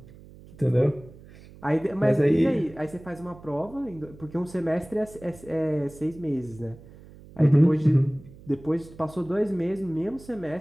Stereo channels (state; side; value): noise; right; hum, 20 dB below the sound